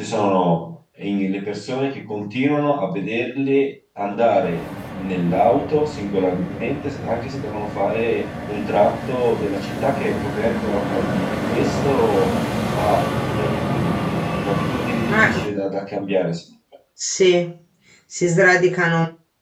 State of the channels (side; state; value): both; identical; correlation 1.00